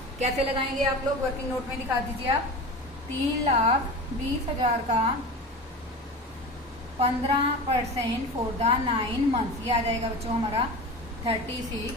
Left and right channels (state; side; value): normal; both; correlation 0.31